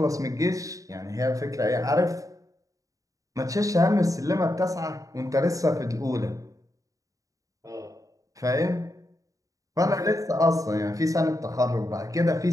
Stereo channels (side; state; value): left; late; 0.16 ms